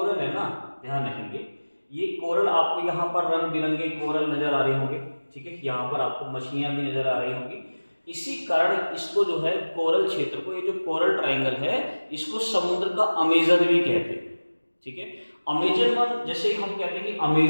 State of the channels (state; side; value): inverted; both; correlation -1.00